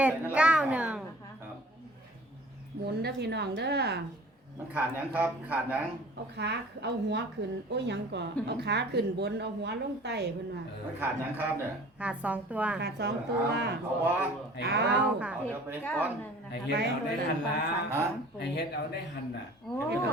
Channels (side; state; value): both; normal; correlation 0.47